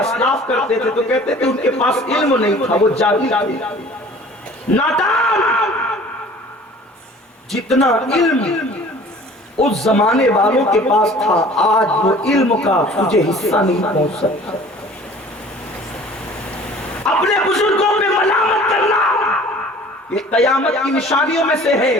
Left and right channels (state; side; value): normal; both; correlation 0.48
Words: کرتے تھے تو کہتے تھے ان کے پاس علم نہیں تھا، وہ جاہل تھے، نادان۔ جتنا علم اس زمانے والوں کے پاس تھا آج وہ علم کا تجھے حصہ نہیں پہنچ سکتا۔ اپنے بزرگوں پہ ملامت کرنا یہ قیامت کی نشانیوں میں سے ہے۔